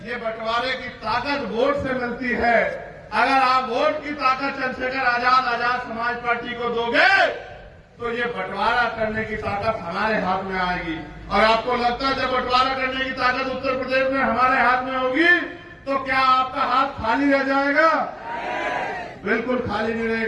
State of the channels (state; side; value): identical; both; correlation 1.00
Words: ये बंटवारे की ताकत वोट से मिलती है। अगर आप वोट की ताकत चंद्रशेखर आजाद समाज पार्टी को दोगे तो ये बंटवारा करने की ताकत हमारे हाथ में आएगी। और आपको लगता है जब बंटवारा करने की ताकत उत्तर प्रदेश में हमारे हाथ में होगी तो क्या आपका हाथ खाली रह जाएगा? बिल्कुल खाली नहीं